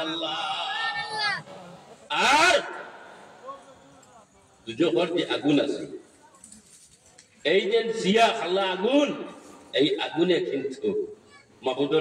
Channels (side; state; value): both; identical; correlation 1.00